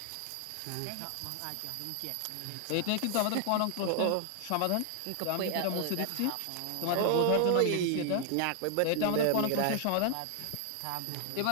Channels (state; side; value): different; both; correlation 0.00